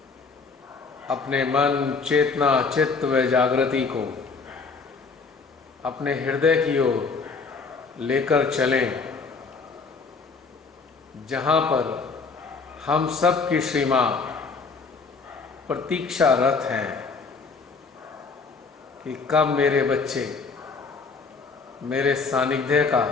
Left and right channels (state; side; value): quieter; right; 4.6 dB